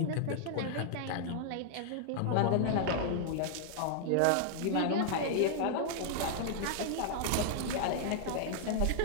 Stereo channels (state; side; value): different; both; correlation -0.01